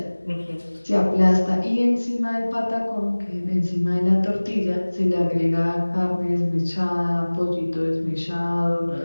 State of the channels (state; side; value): inverted; both; correlation -1.00